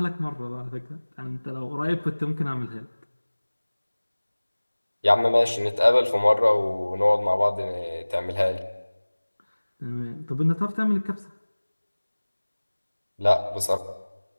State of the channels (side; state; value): both; inverted; correlation -1.00